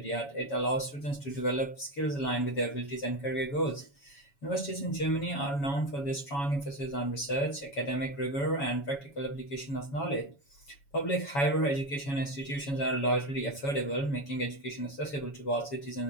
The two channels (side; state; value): right; late; 7.1 ms